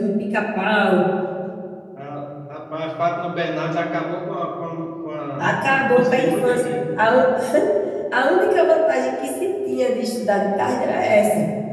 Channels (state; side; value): identical; both; correlation 1.00